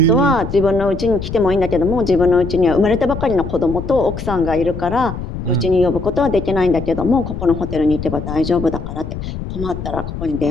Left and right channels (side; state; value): left; noise; rumble, 7 dB below the sound